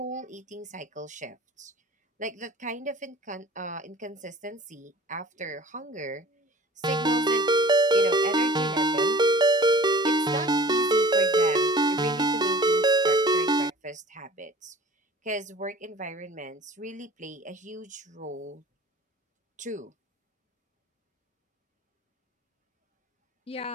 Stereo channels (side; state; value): both; normal; correlation 0.44